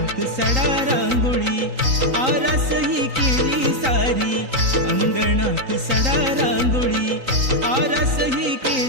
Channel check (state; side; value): late; left; 3.9 ms